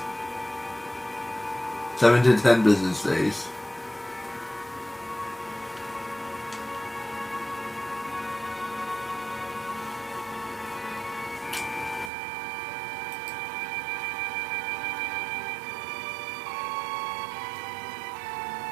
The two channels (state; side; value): drops out; left; at 12.1 s